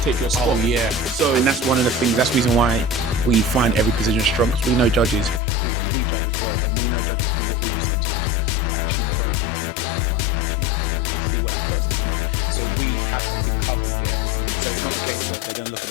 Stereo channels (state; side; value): drops out; right; at 5.4 s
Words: your spot. Oh yeah. So and that's one of the things. That's the reason why we find every position strong. Because we know judges, because we judge as well, and we know judges do what we do sometimes. Who actually prone to not look at the front and actually look at the back and see what that person's doing. So we have something covered there. So it's not a case of they're going to look at